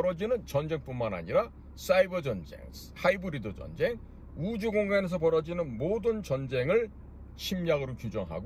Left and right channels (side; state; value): both; identical; correlation 1.00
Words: 전쟁뿐만 아니라 사이버 전쟁, 하이브리드 전쟁, 우주 공간에서 벌어지는 모든 전쟁을 침략으로